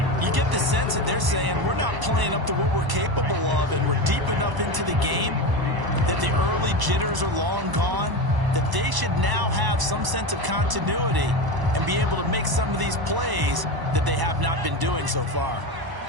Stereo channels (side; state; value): left; late; 1.0 ms